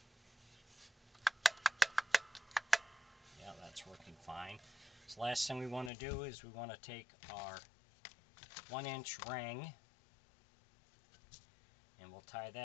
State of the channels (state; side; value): drops out; right; at 5.9 s